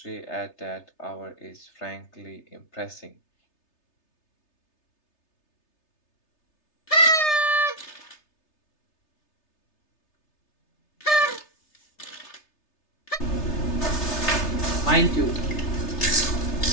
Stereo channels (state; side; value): late; right; 3.3 ms